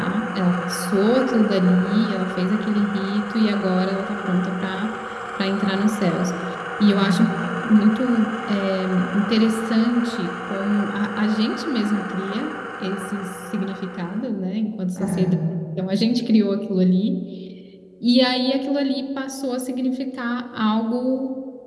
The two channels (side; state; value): both; identical; correlation 1.00